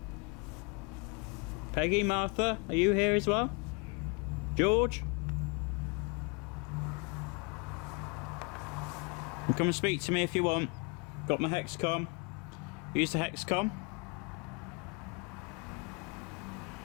Peggy, Martha, are you here as well? George? And come and speak to me if you want. Got my Hexcom. Use the Hexcom.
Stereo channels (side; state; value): right; quieter; 31.7 dB